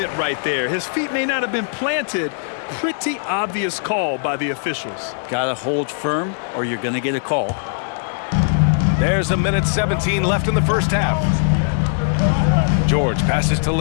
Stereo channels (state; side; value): silent; right; digital silence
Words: right there. His feet may not have been planted. Pretty obvious call by the officials. Gotta hold firm or you're gonna get a call. There's 1:17 left in the first half. George passes to